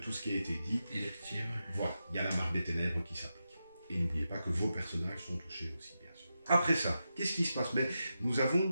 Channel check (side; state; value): both; inverted; correlation -0.89